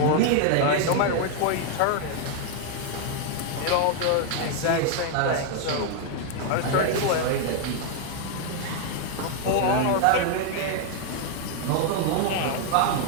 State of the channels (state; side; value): different; both; correlation 0.00